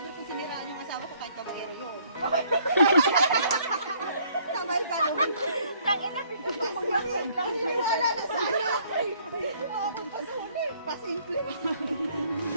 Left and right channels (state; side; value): inverted; both; correlation -0.62